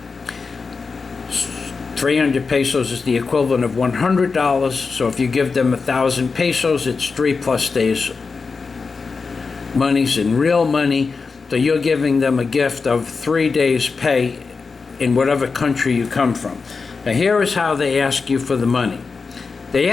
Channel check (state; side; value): quieter; right; 4.7 dB